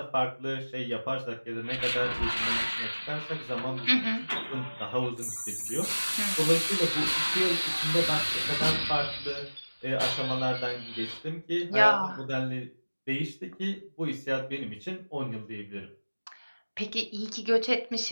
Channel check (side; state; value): both; inverted; correlation -1.00